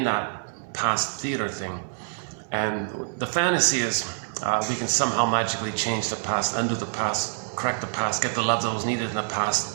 that past theater thing. And the fantasy is we can somehow magically change the past, undo the past, correct the past, get the love that was needed in the past,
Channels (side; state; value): left; silent; digital silence